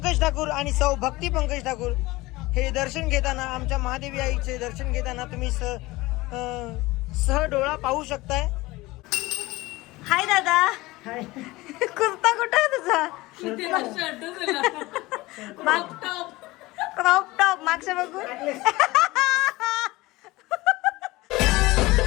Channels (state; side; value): quieter; right; 20.3 dB